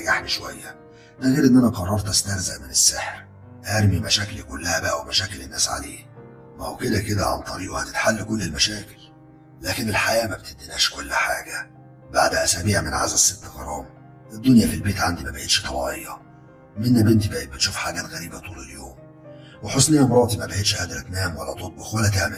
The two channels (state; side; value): identical; both; correlation 1.00